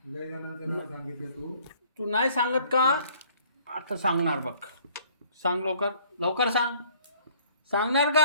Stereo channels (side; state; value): both; inverted; correlation -0.57